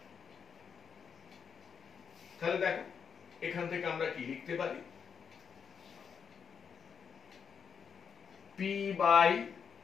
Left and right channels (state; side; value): quieter; right; 6.7 dB